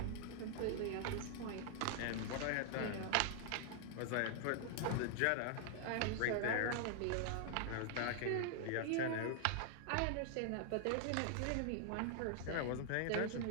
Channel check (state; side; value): different; both; correlation 0.00